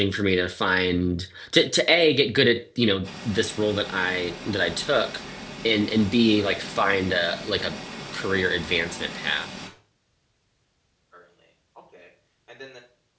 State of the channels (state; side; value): identical; both; correlation 1.00